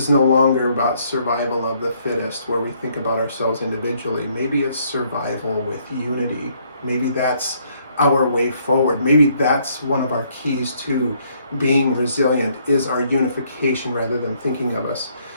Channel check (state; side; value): inverted; both; correlation -0.68